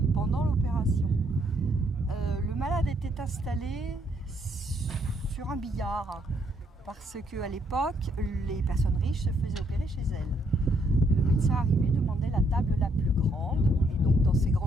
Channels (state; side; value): normal; both; correlation 0.71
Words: pendant l'opération. Le malade était installé sur un billard parce qu'à l'époque, les personnes riches se faisaient opérer chez elles. Le médecin arrivait, demandait la table la plus grande et donc dans ces